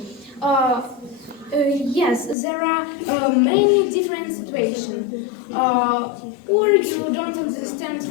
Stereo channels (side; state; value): right; drops out; at 2.4 s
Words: Yes, there are many different situations. Or you don't understand